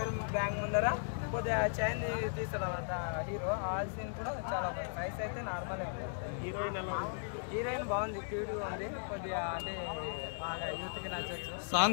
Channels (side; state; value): right; silent; digital silence